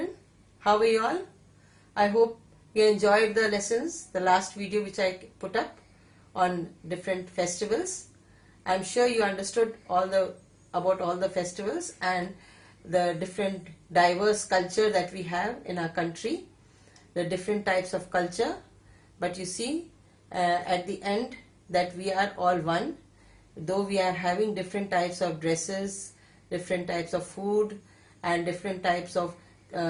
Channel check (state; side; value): identical; both; correlation 1.00